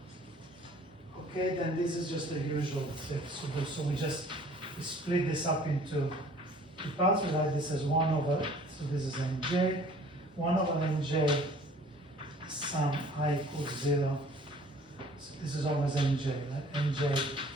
Okay, then this is just the usual thing. So we split this up into two parts. We write this as 1 over, so this is nj, 1 over nj, sum I equals 0. So this is always nj, right? nj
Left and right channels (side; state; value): both; normal; correlation 0.52